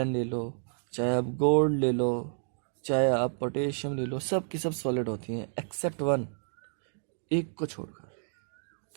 ले लो, चाहे आप गोल्ड ले लो, चाहे आप पोटेशियम ले लो, सब की सब सॉलिड होती हैं एक्सेप्ट वन, एक को छोड़कर।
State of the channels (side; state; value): left; silent; digital silence